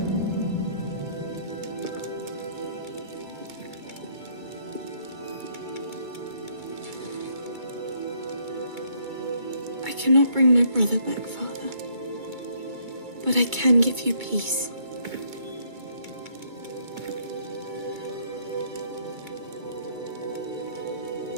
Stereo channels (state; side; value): late; left; 2.2 ms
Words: I cannot bring my brother back, Father. But I can give you peace.